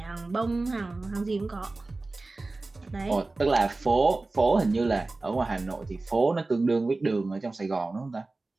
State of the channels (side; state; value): left; quieter; 3.3 dB